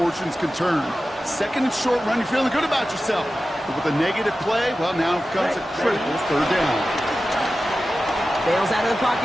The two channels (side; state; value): both; normal; correlation 0.94